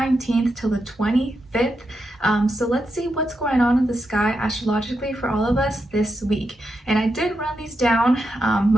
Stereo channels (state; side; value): normal; both; correlation 0.85